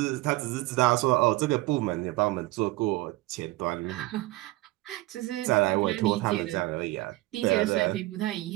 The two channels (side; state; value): left; quieter; 19.8 dB